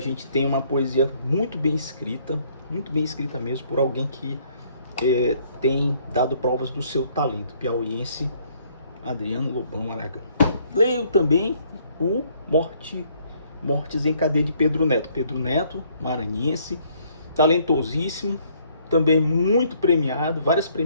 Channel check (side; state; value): both; inverted; correlation -0.65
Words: tem uma poesia muito bem escrita mesmo, por alguém que tem dado provas do seu talento, piauiense, Adriano Lobão Aragão. Leio também o Mortes em Cadeia de Pedro Neto. Pedro Neto, maranhense, talentosíssimo, também muito premiado, várias